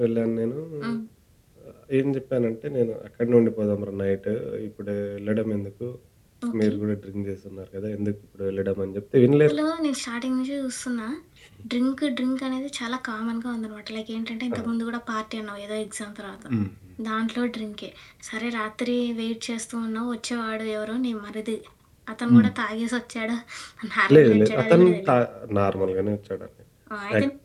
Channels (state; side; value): identical; both; correlation 1.00